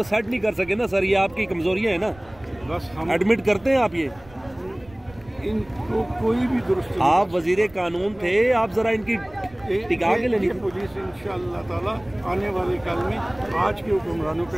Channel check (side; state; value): right; noise; rumble, 24 dB below the sound